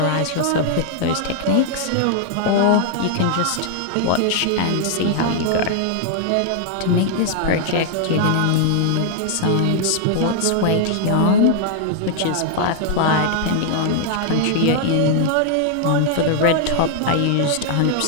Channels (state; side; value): different; both; correlation 0.00